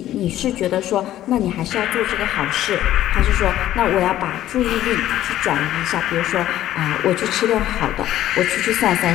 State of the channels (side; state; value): right; quieter; 13.1 dB